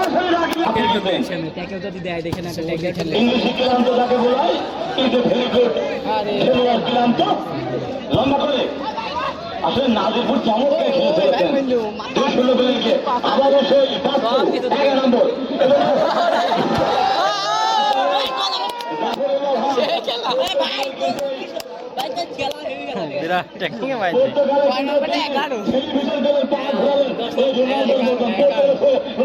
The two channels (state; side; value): identical; both; correlation 1.00